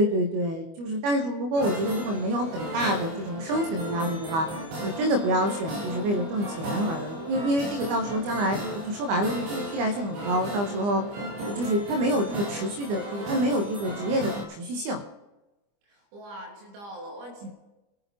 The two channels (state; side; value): late; left; 25 ms